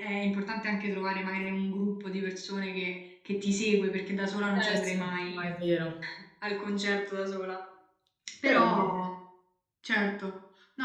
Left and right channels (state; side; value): identical; both; correlation 1.00